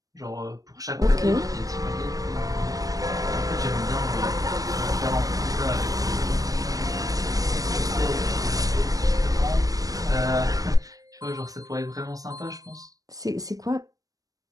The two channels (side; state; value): left; late; 0.17 ms